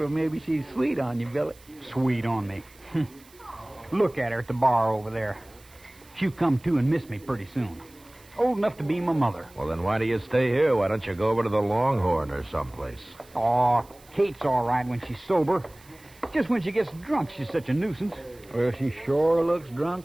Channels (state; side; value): noise; right; hiss, 26 dB below the sound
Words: maybe she's sweet on you, Billy. Sweet on me. Look at her at the bar over there. She'll come to and miss me pretty soon. Old enough to be my mother. Well, then why do you stay here? Why don't you go over to the Longhorn or someplace? Oh, Kate's all right when she's sober. Just when she gets drunk, she's such a nuisance. Well, she sure looks